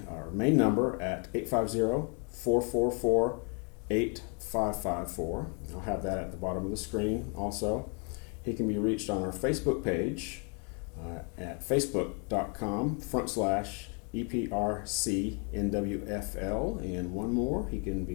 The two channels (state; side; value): quieter; right; 36.9 dB